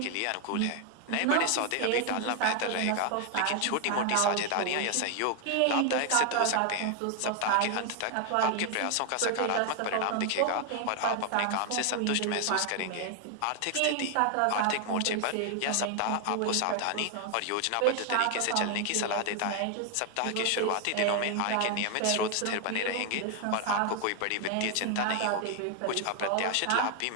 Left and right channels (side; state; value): both; different; correlation 0.01